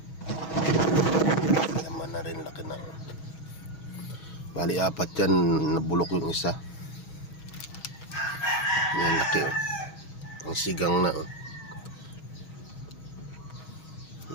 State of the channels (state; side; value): late; right; 6.3 ms